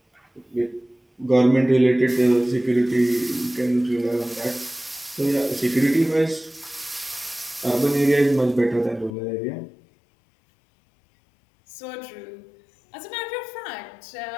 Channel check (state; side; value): drops out; right; at 9.2 s